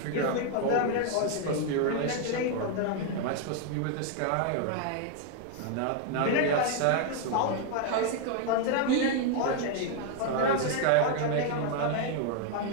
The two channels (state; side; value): different; both; correlation 0.00